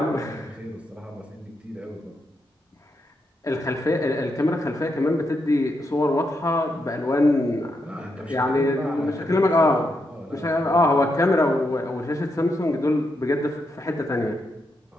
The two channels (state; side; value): normal; both; correlation 0.82